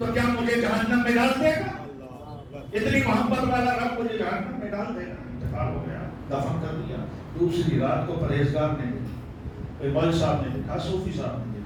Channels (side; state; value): both; identical; correlation 1.00